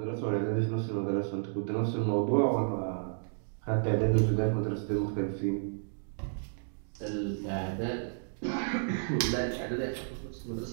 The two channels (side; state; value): left; silent; digital silence